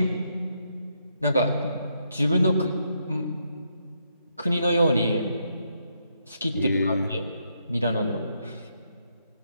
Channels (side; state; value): both; inverted; correlation -0.78